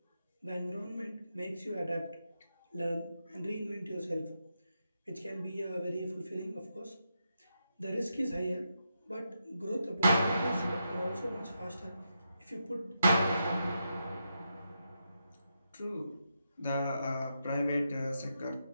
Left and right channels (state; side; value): inverted; both; correlation -0.84